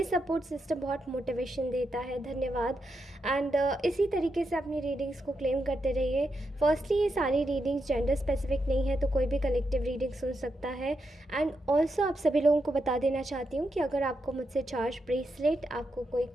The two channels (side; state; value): both; normal; correlation 0.84